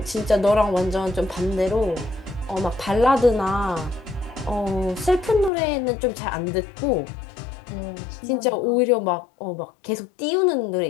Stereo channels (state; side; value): drops out; right; at 5.5 s